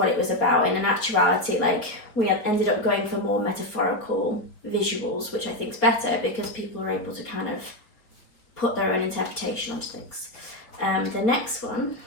it was about. And in actuality, like we ended up going for more metaphorical visuals, which I think is better because people are able to kind of put their own interpretation onto things. The next one,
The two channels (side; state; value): right; late; 4.2 ms